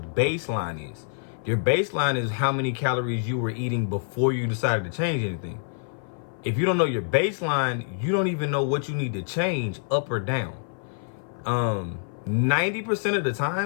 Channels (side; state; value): right; silent; 55 dB below the other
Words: is. Your baseline is how many calories you were eating before you decided to change anything. If you don't know your baseline, you don't even know what you need to change up or down. 90% of the